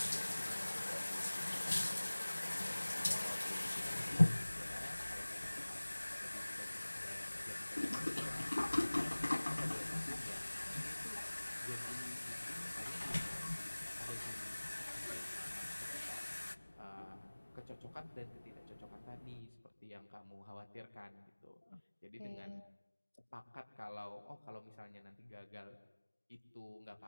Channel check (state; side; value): inverted; both; correlation -1.00